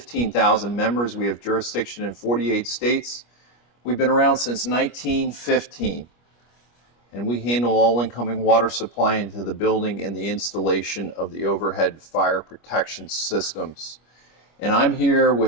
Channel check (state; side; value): late; right; 25 ms